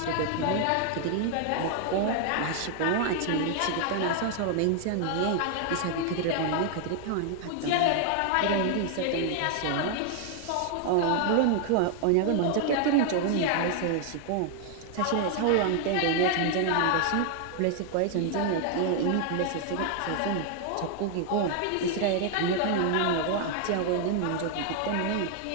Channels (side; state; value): both; different; correlation 0.00